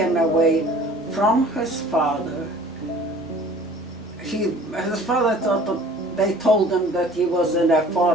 away from his father. His father thought they told him that he was in a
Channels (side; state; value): both; normal; correlation 0.49